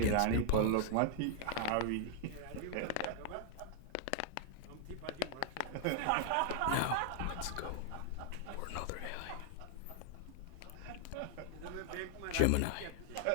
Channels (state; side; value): different; both; correlation 0.00